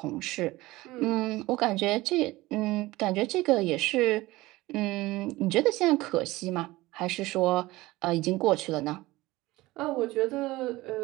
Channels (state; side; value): quieter; left; 19.2 dB